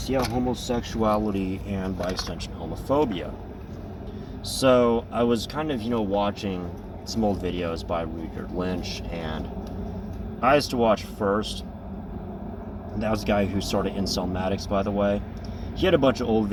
yeah, homosexuality and by extension homophobia. So, I was kind of, watching some old videos by Richard Lynch, and I used to watch first. That was the guy who started Incelmatics, by the way. He had a bunch of old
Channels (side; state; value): both; identical; correlation 1.00